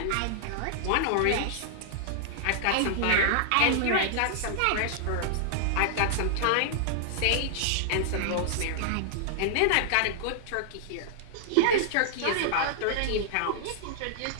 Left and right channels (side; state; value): both; different; correlation -0.01